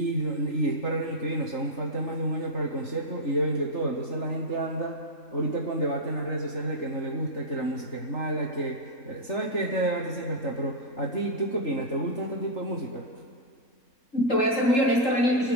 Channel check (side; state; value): right; late; 3.7 ms